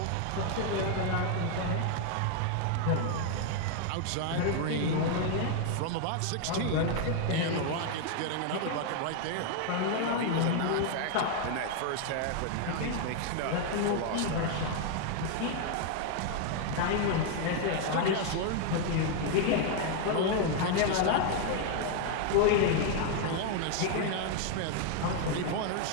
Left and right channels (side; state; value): both; different; correlation 0.00